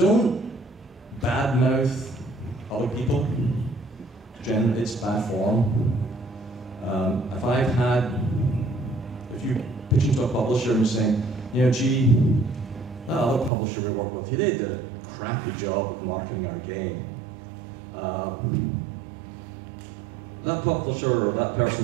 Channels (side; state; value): left; drops out; at 13.5 s